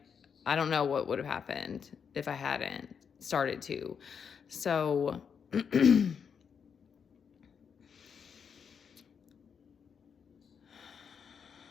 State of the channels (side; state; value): right; quieter; 6.8 dB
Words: I don't know what would have happened if I hadn't started to. So